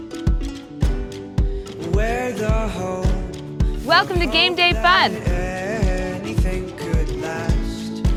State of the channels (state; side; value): identical; both; correlation 1.00